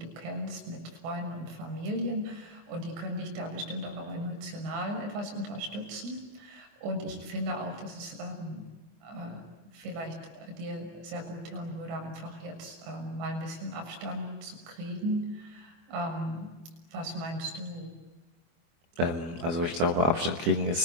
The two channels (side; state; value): left; late; 24 ms